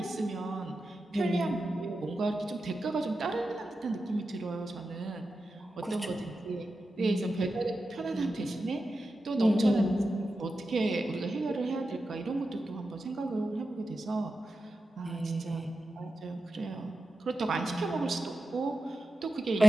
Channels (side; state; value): both; normal; correlation 0.91